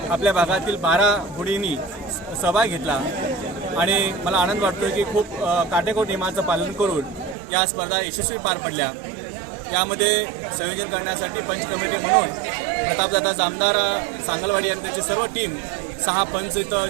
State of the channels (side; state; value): left; drops out; at 7.4 s